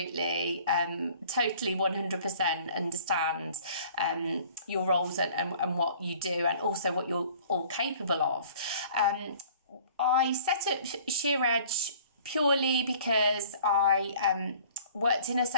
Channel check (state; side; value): inverted; both; correlation -0.51